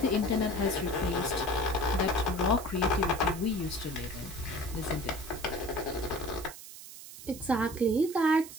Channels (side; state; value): right; noise; hiss, 14 dB below the sound